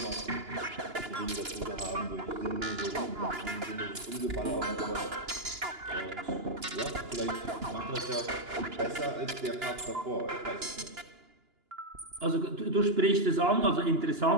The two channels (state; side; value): late; left; 2.9 ms